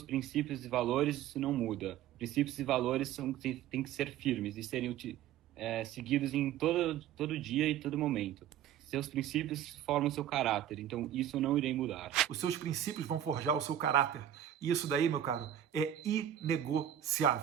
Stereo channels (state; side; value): quieter; left; 11.0 dB